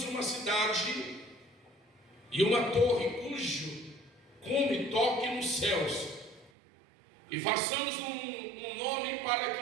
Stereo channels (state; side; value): drops out; left; at 6.5 s